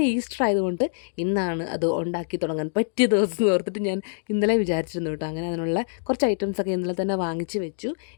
ഈസ്റ്റർ ആയതുകൊണ്ട് ഇന്നാണ് അത് ഉണ്ടാക്കി തുടങ്ങാൻ പറ്റിയ ദിവസം എന്ന് ഓർത്തിട്ട് ഞാൻ ഇന്നലെ വിചാരിച്ചിരുന്നു കേട്ടോ. അങ്ങനെ അതിനുള്ള കുറച്ച് ഐറ്റംസൊക്കെ ഇന്നലെ തന്നെ വാങ്ങിച്ച് വെച്ചു.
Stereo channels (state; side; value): silent; right; digital silence